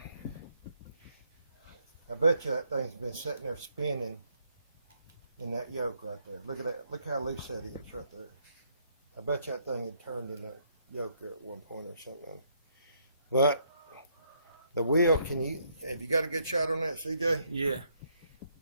I bet you that thing's been sitting there spinning in that yoke right there. Look at that. Look how loose that is right there. I bet you that thing had turned in that yoke at one point or something. But the wheel, have you got a good shot on that, CJ? Yeah.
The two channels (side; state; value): both; inverted; correlation -0.72